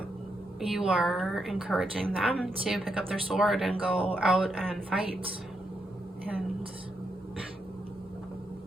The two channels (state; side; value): normal; both; correlation 0.81